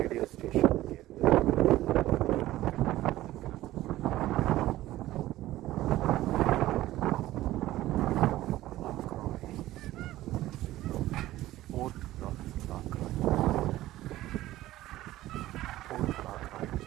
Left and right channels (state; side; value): quieter; left; 15.5 dB